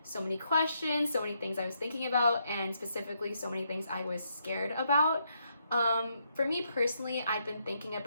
so many questions, so many things I was thinking about, and specifically so many things I was scared about. For me personally, I've been thinking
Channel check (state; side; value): inverted; both; correlation -0.77